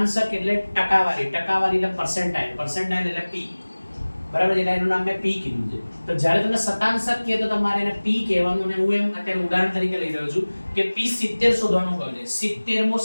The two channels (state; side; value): inverted; both; correlation -1.00